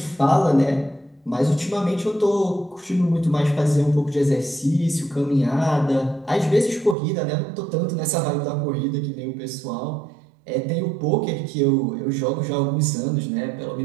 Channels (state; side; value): drops out; left; at 7.0 s